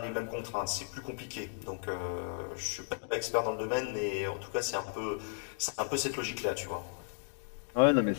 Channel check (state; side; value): silent; right; digital silence